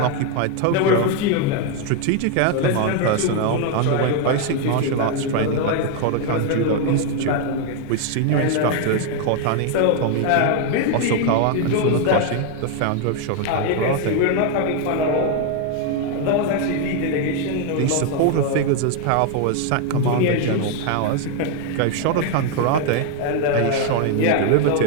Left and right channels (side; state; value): both; different; correlation 0.01